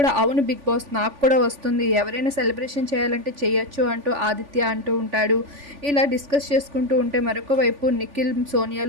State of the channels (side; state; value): left; late; 3.5 ms